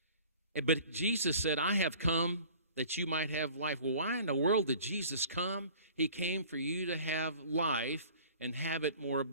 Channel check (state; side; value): inverted; both; correlation -0.47